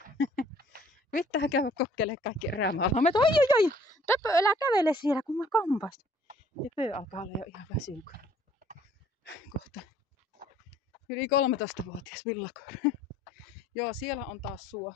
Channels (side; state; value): both; normal; correlation 0.58